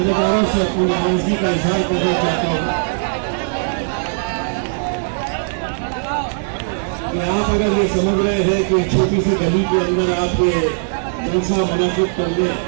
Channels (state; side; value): silent; left; digital silence